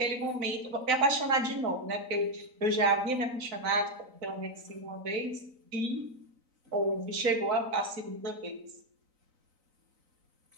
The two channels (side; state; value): left; late; 3.9 ms